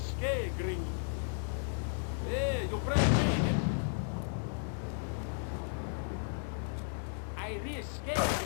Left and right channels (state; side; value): silent; right; digital silence